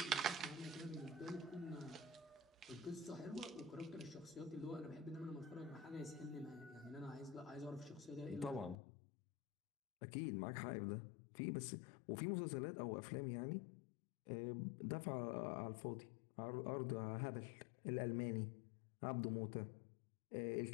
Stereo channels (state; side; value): drops out; right; at 8.8 s